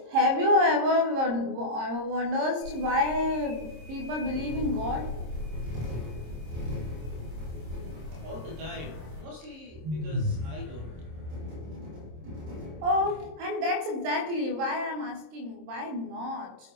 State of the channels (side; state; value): left; late; 26 ms